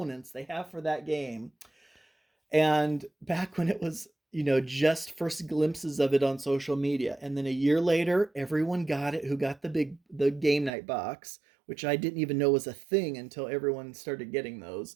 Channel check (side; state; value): left; drops out; at 10.7 s